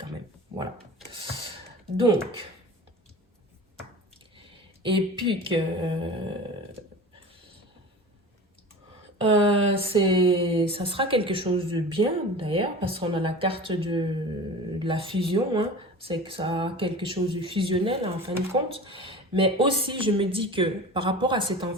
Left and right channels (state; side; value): normal; both; correlation 0.36